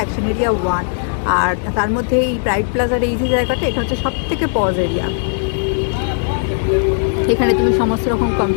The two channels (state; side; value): silent; right; 62 dB below the other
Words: এরিয়া 1, আর তার মধ্যে এই প্রাইড প্লাজার এই যে জায়গাটা, এটা হচ্ছে সব থেকে পজ এরিয়া। এখানে তুমি সমস্ত রকম